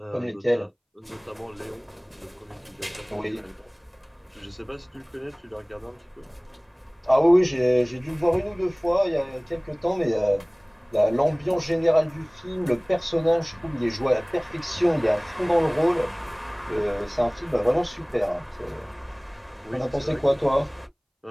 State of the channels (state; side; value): identical; both; correlation 1.00